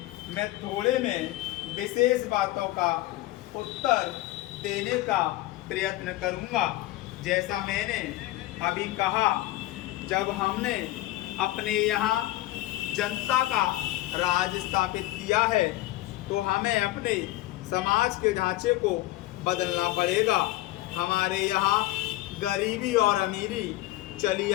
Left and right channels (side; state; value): right; quieter; 17.2 dB